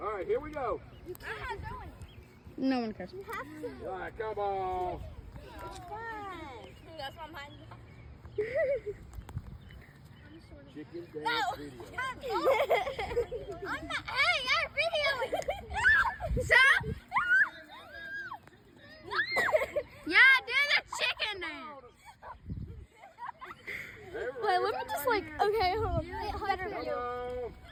right, here we go. No one cares. All right, come on. It's fun. That's why I'm hiding. Chicken dance video. I'm not. Hey, you're videoing. Stop! Yeah, do the chicken dance. Wait, let me just like. Okay, hold on. Better Come you. on.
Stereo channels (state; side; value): identical; both; correlation 1.00